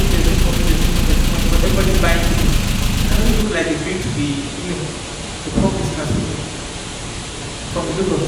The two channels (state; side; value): identical; both; correlation 1.00